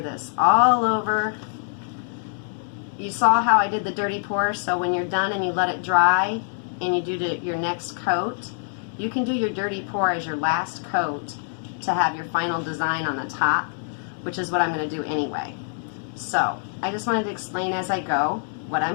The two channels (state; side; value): silent; right; digital silence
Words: this all over. You saw how I did the dirty pour, so when you're done and you let it dry and you do your next coat, you can do your dirty pour as your last coat to have your final design on the top, which is what I'm going to do anyway. So I just wanted to explain as I go what